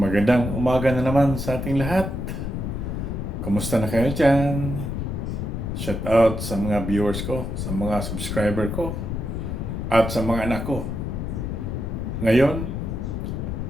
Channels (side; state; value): left; noise; rumble, 3 dB below the sound